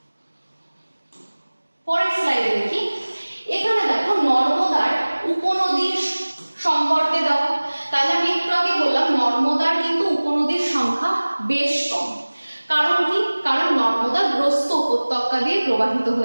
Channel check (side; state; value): both; inverted; correlation -1.00